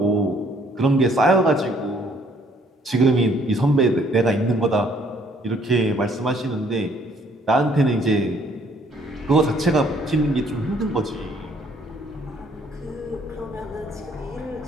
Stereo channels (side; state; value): both; normal; correlation 0.63